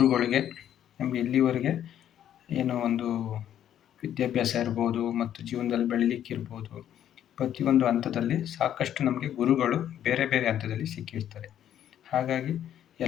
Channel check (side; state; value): right; quieter; 10.6 dB